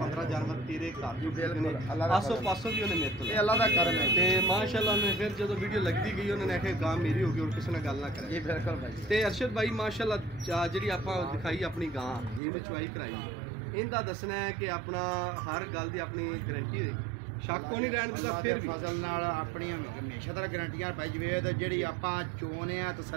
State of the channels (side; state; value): left; drops out; at 12.4 s